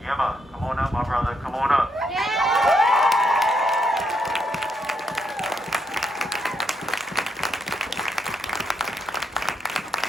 Yema, come on up, my brother. Come on up.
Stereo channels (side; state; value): both; normal; correlation 0.78